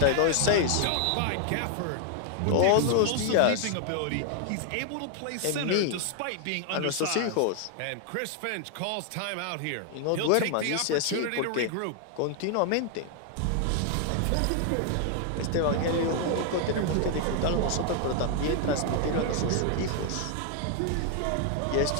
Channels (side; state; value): both; different; correlation 0.00